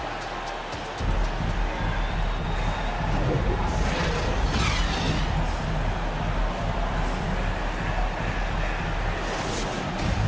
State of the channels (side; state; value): both; identical; correlation 1.00